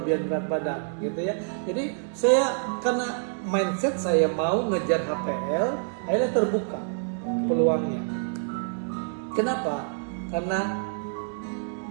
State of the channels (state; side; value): silent; left; 60 dB below the other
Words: berat badan gitu ya. Jadi saya karena mindset saya mau ngejar HPL, akhirnya terbuka peluangnya. Kenapa? Karena